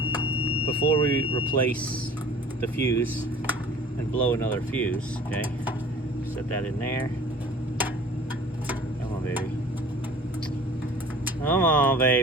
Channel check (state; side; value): normal; both; correlation 0.46